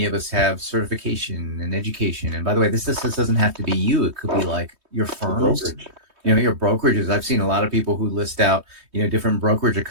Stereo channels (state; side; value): late; left; 3.2 ms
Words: of us have certification and education. And by the way, this doesn't have to be you. It could be like your firms. Brokerage. Your brokerages. I've seen a lot of people who list out, different brokerage